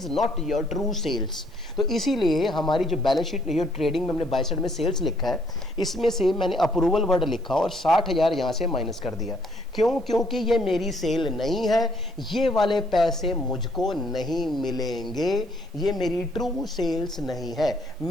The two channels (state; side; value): normal; both; correlation 0.67